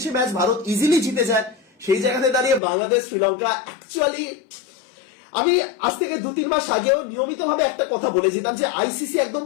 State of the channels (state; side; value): drops out; right; at 2.6 s